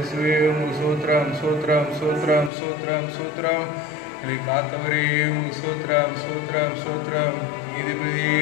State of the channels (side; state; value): right; drops out; at 2.5 s